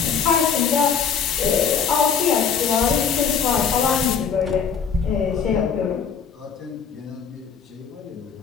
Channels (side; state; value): right; quieter; 6.6 dB